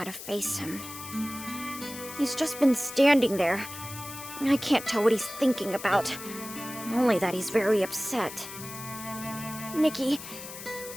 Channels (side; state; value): left; noise; hiss, 12 dB below the sound